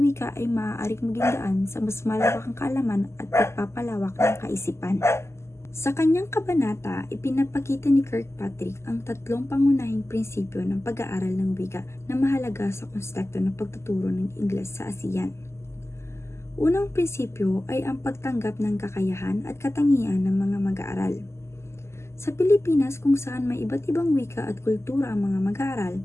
ay maaaring maging daan sa mas malawakang kaalaman at pagpapalawak ng kaisipan. Sa kanyang kabanata, ipinapakita ni Kirkpatrick ang tatlong pangunahing prinsipyo ng pag-aaral ng wika na mahalaga sa konteksto ng pagtuturo ng Ingles sa ASEAN. Unang prinsipyo ay ang pagtanggap ng kakayahan at katangian ng mga mag-aaral. Sa Pilipinas, kung saan may iba't ibang wika at kultura ang mga mag-aaral,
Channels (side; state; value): right; late; 0.13 ms